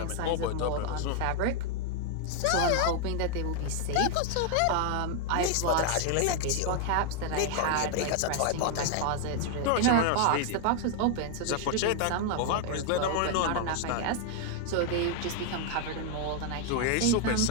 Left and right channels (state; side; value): different; both; correlation 0.00